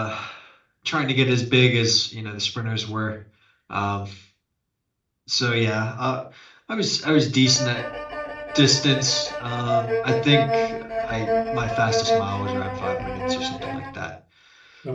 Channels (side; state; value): both; identical; correlation 1.00